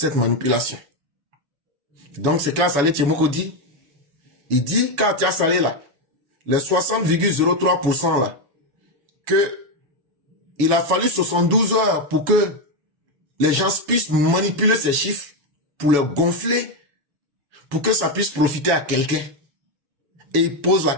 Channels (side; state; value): left; late; 7.1 ms